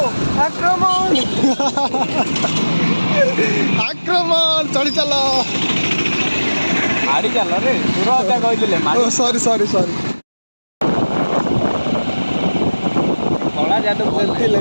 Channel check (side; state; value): both; inverted; correlation -1.00